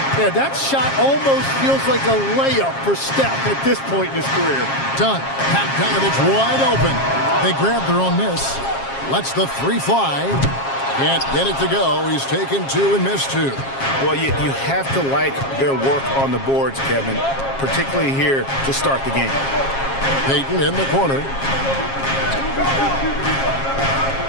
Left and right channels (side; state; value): right; late; 7.4 ms